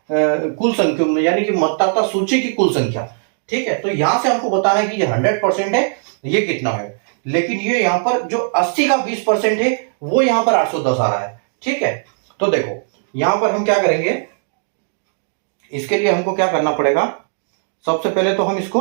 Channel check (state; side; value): silent; left; digital silence